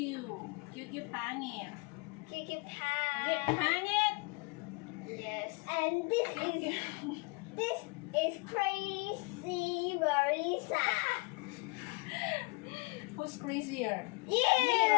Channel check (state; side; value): quieter; right; 28.1 dB